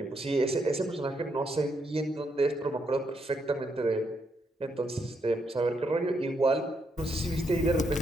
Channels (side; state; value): both; normal; correlation 0.78